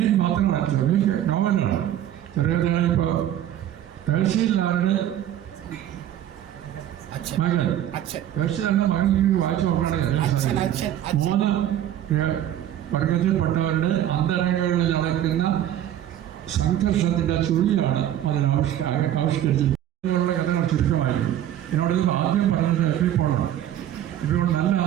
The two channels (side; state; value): left; quieter; 11.6 dB